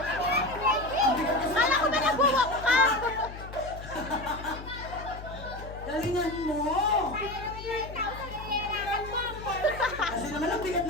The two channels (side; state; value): left; noise; hum, 12 dB below the sound